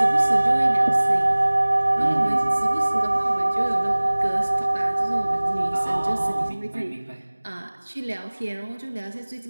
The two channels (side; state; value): both; inverted; correlation -1.00